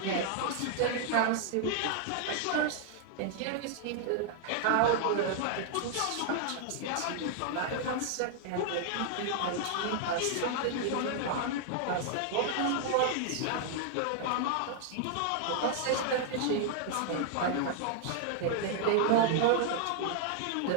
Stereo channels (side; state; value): both; different; correlation 0.00